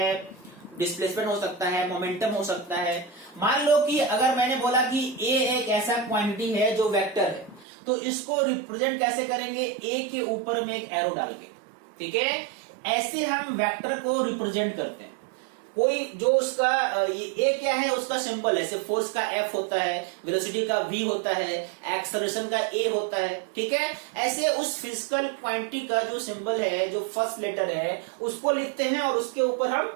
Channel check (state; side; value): drops out; left; at 7.7 s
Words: डिस्प्लेसमेंट हो सकता है, मोमेंटम हो सकता है। मान लो कि अगर मैंने बोला कि ए एक ऐसा क्वांटिटी है जो वेक्टर है, तो इसको रिप्रेजेंट कैसे करेंगे, ए के ऊपर में एक एरो डाल के, ठीक है। ऐसे हम वेक्टर को रिप्रेजेंट करते हैं। कोई जो उसका ए क्या है, उसका सिंबल है, सिर्फ फोर्स का एफ होता है, वेलोसिटी का वी होता है, एक्सेलरेशन का ए होता है, ठीक है। ऐसे उस फिजिकल क्वांटिटी का जो सिंबल है, जो फर्स्ट लेटर है, उसको लिखते हैं और उसके ऊपर